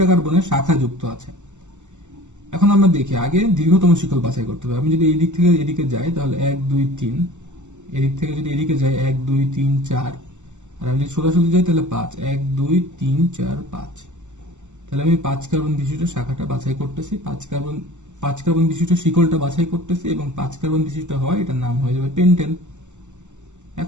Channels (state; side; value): late; left; 0.84 ms